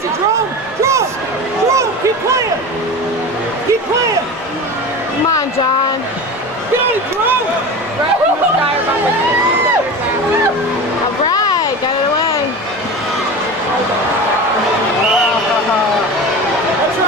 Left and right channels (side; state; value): both; normal; correlation 0.30